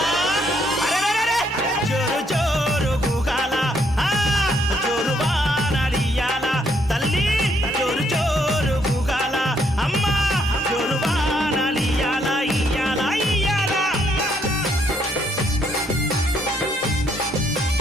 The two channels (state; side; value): normal; both; correlation 0.71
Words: అరెరెరెరె జోరు జోరు గుగాల జోరు వానలియాల తల్లి జోరు జోరు గుగాల అమ్మ జోరు వానలియాల ఇయ్యాల ఇయ్యాల